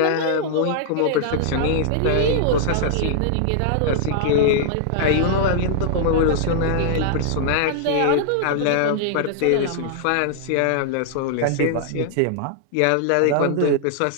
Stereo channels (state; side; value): different; both; correlation -0.01